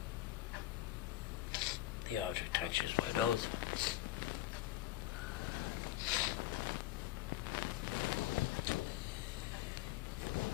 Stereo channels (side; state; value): right; quieter; 15.0 dB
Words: the object touches my nose,